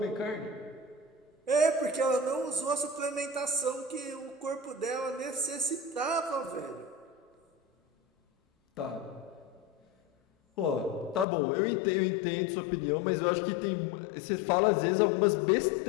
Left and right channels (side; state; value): right; drops out; at 11.2 s